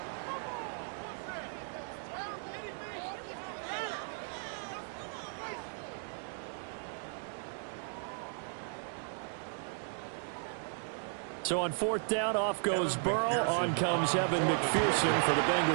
So on 4th down, off goes Burrow. On comes Evan McPherson for the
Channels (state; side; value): silent; left; 54 dB below the other